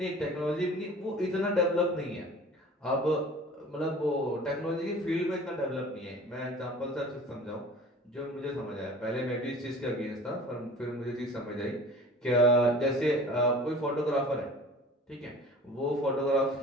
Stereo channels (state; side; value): normal; both; correlation 0.43